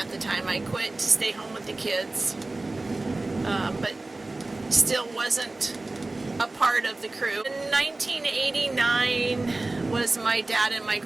the time. I quit to stay home with the kids, but still wasn't a part of the crew. In 1989 was my dad and my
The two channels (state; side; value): quieter; left; 3.1 dB